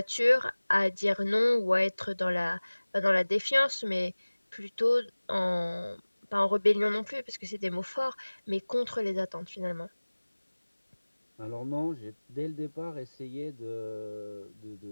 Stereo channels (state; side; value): inverted; both; correlation -1.00